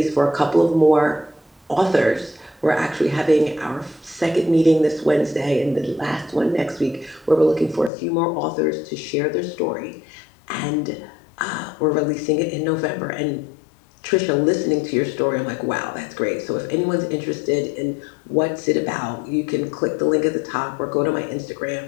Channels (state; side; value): drops out; right; at 7.9 s